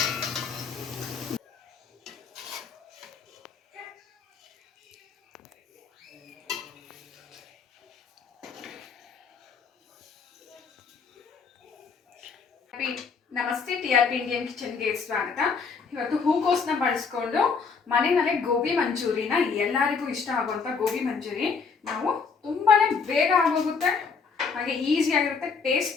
ನಮಸ್ತೆ, TRP ಇಂಡಿಯನ್ ಕಿಚನ್ಗೆ ಸ್ವಾಗತ. ಇವತ್ತು ಹೂಕೋಸನ್ನ ಬಳಸ್ಕೊಂಡು ಮನೆಯಲ್ಲೇ ಗೋಬಿ ಮಂಚೂರಿನ, ಎಲ್ಲರಿಗೂ ಇಷ್ಟ ಆಗುವಂಥ ಗೋಬಿ ಮಂಚೂರಿ ನಾವು ತುಂಬಾನೇ ಬೇಗ ಆಗೋಗುತ್ತೆ, ಹಾಗೆ ಈಸಿ ಆಗಿರುತ್ತೆ,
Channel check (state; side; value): quieter; right; 5.3 dB